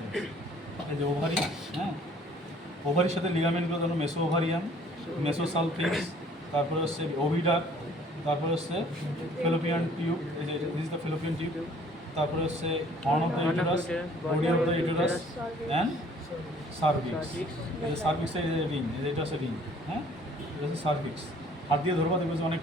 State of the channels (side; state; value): both; normal; correlation 0.56